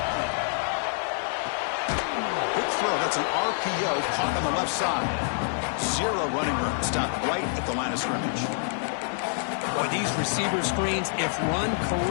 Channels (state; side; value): silent; right; digital silence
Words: That's an RPO caught on the left side. Zero running room. Stopped right at the line of scrimmage. Boy, these receiver screens, if run